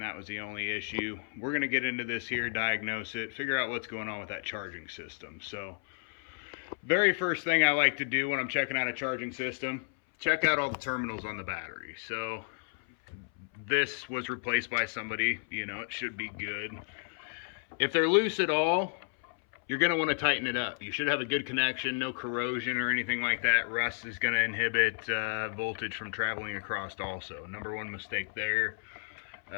that was the only issue. We're going to get into this here, diagnose it, figure out what's going on with that charging system. So very first thing I like to do when I'm checking out a charging system, check out all the terminals on the battery. So this was replaced by somebody, you know, it should be good. If they're loose at all, you're going to want to tighten it up. You should have a good connection, no corrosion or anything like that. Rust is going to inhibit voltage from traveling across also. Number one mistake there.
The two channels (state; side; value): silent; right; 56 dB below the other